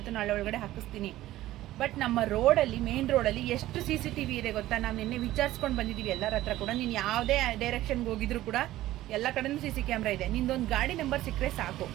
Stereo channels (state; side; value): quieter; left; 15.3 dB